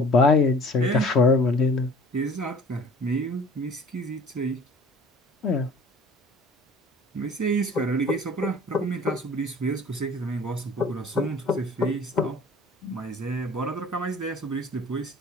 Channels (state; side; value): normal; both; correlation 0.48